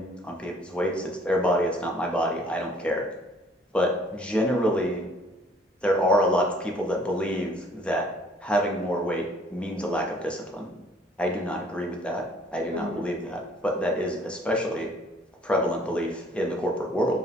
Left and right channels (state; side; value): normal; both; correlation 0.58